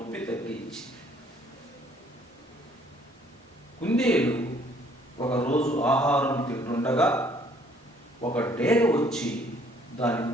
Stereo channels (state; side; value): normal; both; correlation 0.61